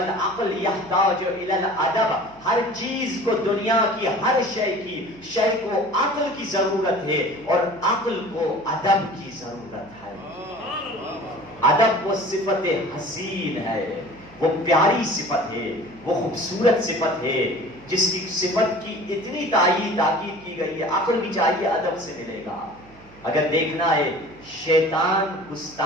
یحتاج الی الادب، ہر چیز کو دنیا کی ہر شے کو عقل کی ضرورت ہے اور عقل کو ادب کی ضرورت ہے۔ ادب وہ صفت حسین ہے، وہ پیاری صفت ہے، وہ خوبصورت صفت ہے جس کی صفت کی اتنی تاکید کی گئی ہے۔ عقل بھی چاہیے ادب سے ملے گا۔ اگر دیکھنا ہے شیطان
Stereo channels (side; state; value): right; noise; hum, 24 dB below the sound